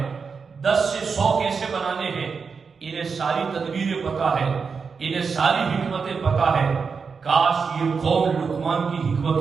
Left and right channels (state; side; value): quieter; left; 5.4 dB